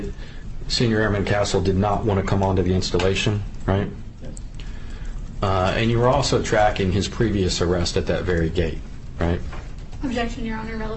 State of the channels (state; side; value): identical; both; correlation 1.00